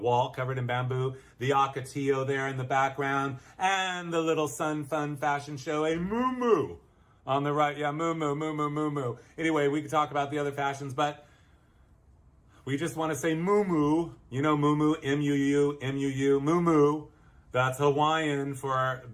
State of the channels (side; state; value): both; identical; correlation 1.00